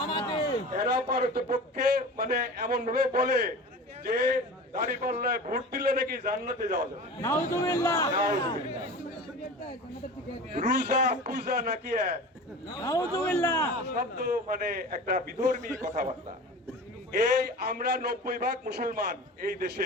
এরা পারতপক্ষে মানে এমন ভাবে বলে যে দাঁড়িপাল্লায় ভোট দিলে নাকি জান্নাতে যাওয়া যাবে। নাউজুবিল্লাহ। নাউজুবিল্লাহ। রোজা পূজা নাকি নাউজুবিল্লাহ শব্দ মানে একটা বিধর্মী কথাবার্তা। এই আমরা 90% মুসলমান এই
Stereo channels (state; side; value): normal; both; correlation 0.35